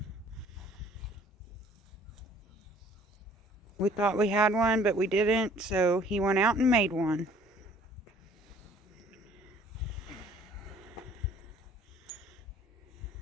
We thought we had one, but we didn't, so he went out and made one.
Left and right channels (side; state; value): both; normal; correlation 0.56